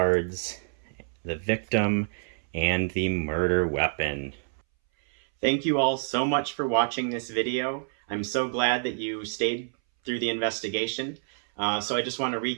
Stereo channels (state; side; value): silent; left; 60 dB below the other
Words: the victim, and the murder weapon. Thank you all so much for watching this video. I'm so glad that you stayed through the investigation. So I just want to